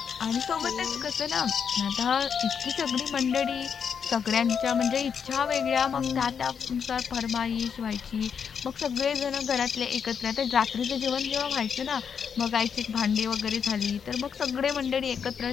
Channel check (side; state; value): right; quieter; 7.0 dB